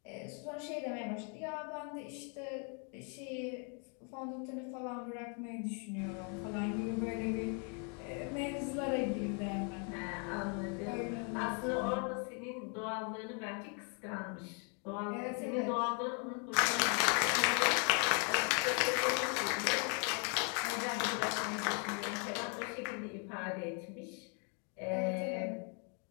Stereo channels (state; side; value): quieter; right; 38.9 dB